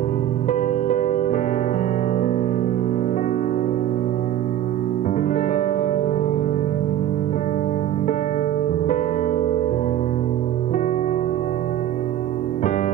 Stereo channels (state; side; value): quieter; left; 11.6 dB